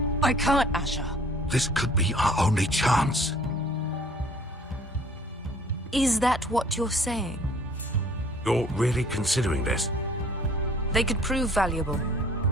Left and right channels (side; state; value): both; normal; correlation 0.54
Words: I can't, Asher. This could be our only chance. Is that what you're saying? You're really considering this? They could prove valuable.